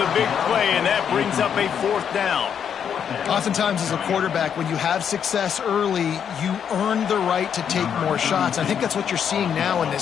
big play, and that brings up a 4th down. Oftentimes as a quarterback, when you have success early, you earn the right to take more shots. I think that's what you're seeing now in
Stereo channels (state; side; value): quieter; right; 8.0 dB